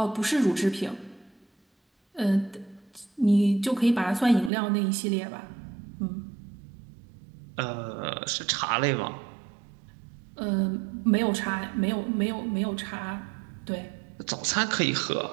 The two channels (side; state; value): left; drops out; at 4.5 s